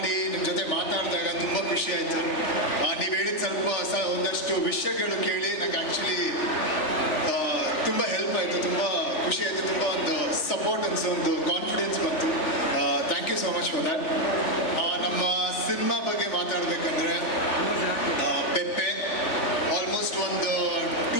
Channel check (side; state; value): right; late; 3.4 ms